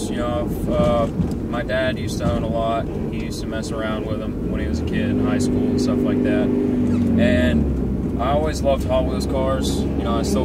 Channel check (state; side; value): identical; both; correlation 1.00